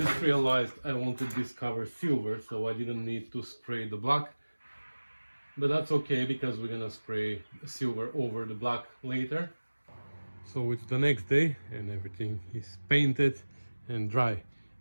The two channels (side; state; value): both; inverted; correlation -1.00